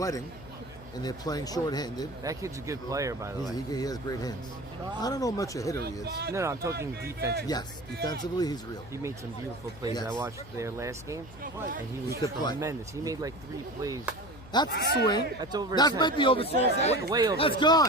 and they're playing short-handed. That kid's a good player, by the way. He has great hands. I don't know how much a hitter he is. No, I'm talking defensively. Yes, defensively he's real. He made some beautiful plays. Yes. I watched their last game, and he was could play. tremendous. He made like 3 plays. That's the swing. That's over. That 10. might be over 10. Way over. That's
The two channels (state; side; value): noise; left; hum, 17 dB below the sound